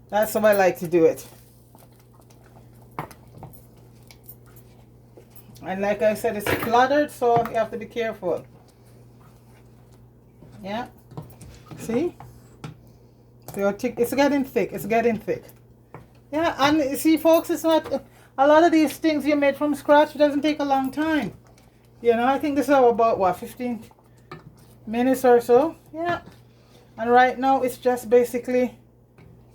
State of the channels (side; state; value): both; identical; correlation 1.00